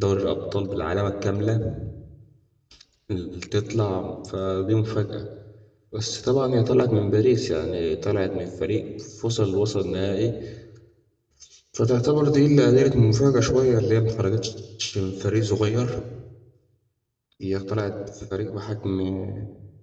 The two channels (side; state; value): both; identical; correlation 1.00